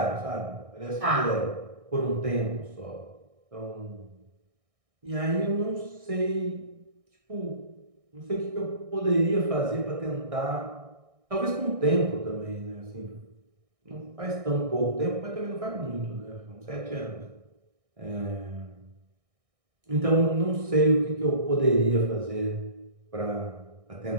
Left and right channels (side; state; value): left; late; 1.6 ms